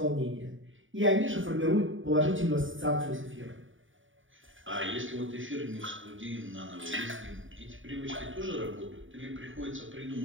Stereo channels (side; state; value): left; late; 0.57 ms